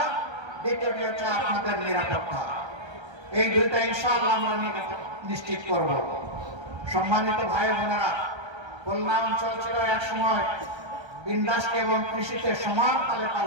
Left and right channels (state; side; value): late; left; 1.3 ms